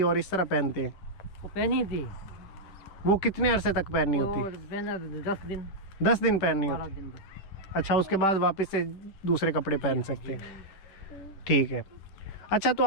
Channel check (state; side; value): late; right; 10 ms